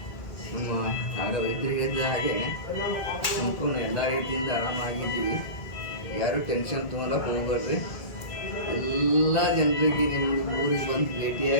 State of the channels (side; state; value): right; late; 1.9 ms